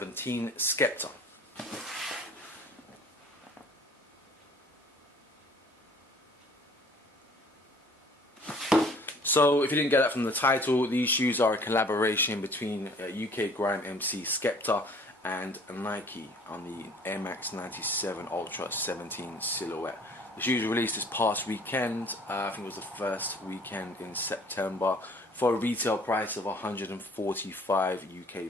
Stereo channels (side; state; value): both; normal; correlation 0.53